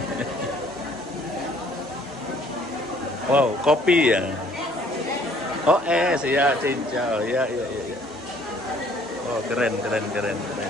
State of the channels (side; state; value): both; normal; correlation 0.59